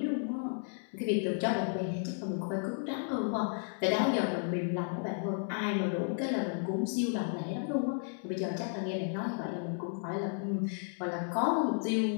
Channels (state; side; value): silent; right; 56 dB below the other